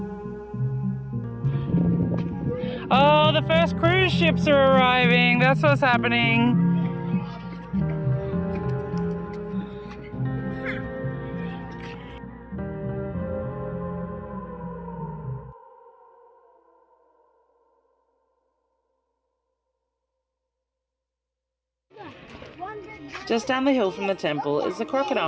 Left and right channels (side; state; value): both; identical; correlation 1.00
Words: Oh, the first cruise ships are arriving. That's what's happening. Just down the hill from the temple is the